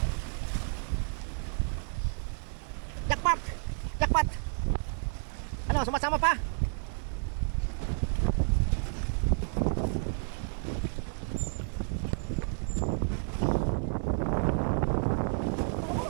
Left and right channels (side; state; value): left; silent; 57 dB below the other